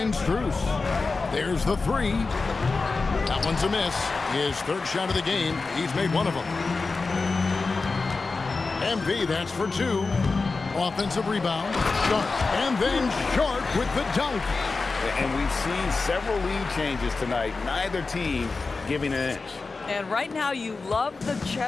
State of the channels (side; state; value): right; quieter; 4.0 dB